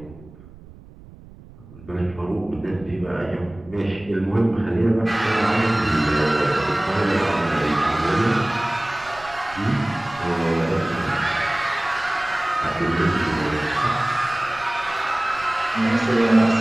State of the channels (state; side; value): noise; right; rumble, 21 dB below the sound